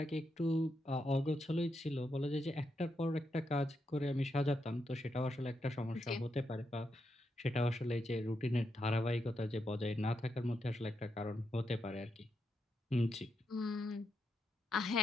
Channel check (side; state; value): both; normal; correlation 0.83